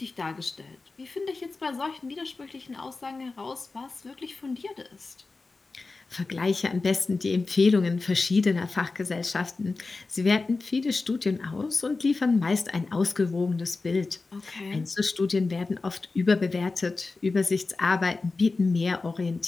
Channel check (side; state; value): right; quieter; 3.8 dB